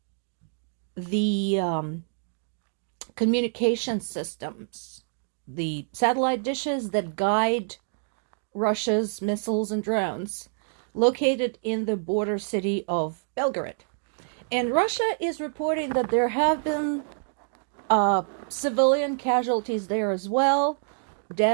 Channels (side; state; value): left; silent; digital silence